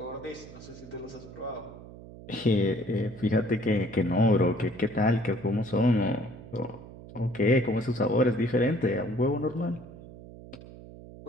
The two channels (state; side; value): noise; right; hum, 16 dB below the sound